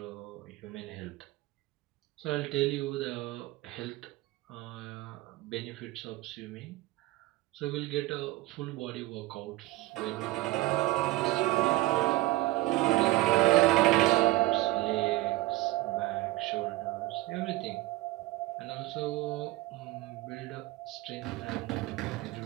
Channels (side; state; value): left; quieter; 18.7 dB